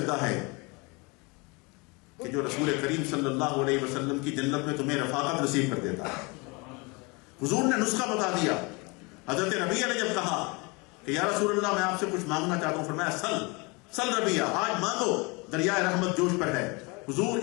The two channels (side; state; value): right; quieter; 28.2 dB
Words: ہے کہ جو رسول کریم صلی اللہ علیہ وسلم کی جنت میں تمہیں رفاقت نصیب کر دیتا ہے. حضور نے نسخہ بتا دیا. حضرت ربیعہ نے جب کہا کہ یا رسول اللہ میں آپ سے کچھ مانگنا چاہتا ہوں، فرمایا سل ربیعہ، آج مانگو، دریائے رحمت جوش پر ہے. حضور